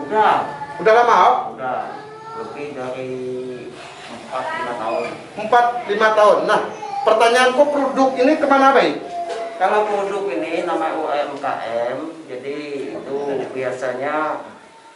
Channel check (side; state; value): both; identical; correlation 1.00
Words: Udah lama, oh? Udah lebih dari 4-5 tahun. 4-5 tahun. Nah, pertanyaanku, produk ini kemana, Bay? Kalau produk ini namanya UMKM, jadi itu biasanya